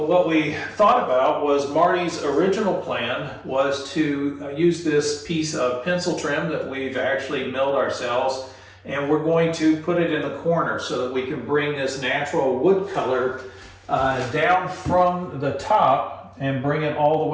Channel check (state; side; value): identical; both; correlation 1.00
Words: what we thought about was Marty's original plan was to use this piece of pencil trim that we've actually milled ourselves, and we're going to put it in the corner so that we can bring this natural wood color down from the top and bring it all the